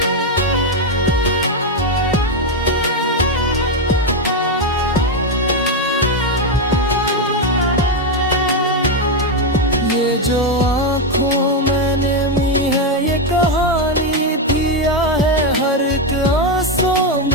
ये जो आँखों में नमी है ये कहानी थी या है। हर एक आंसू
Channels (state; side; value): normal; both; correlation 0.05